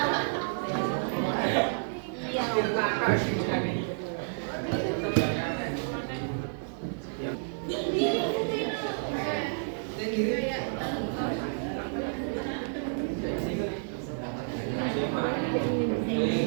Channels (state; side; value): silent; left; 58 dB below the other